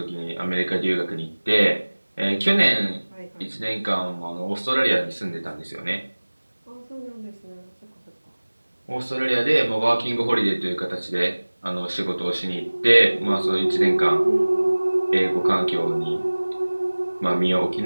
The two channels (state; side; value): inverted; both; correlation -1.00